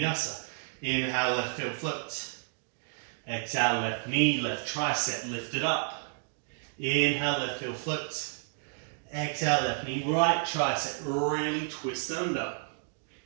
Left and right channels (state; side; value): silent; left; digital silence